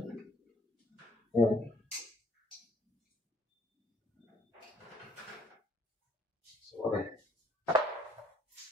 Ayan. So, okay.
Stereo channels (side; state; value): both; normal; correlation 0.62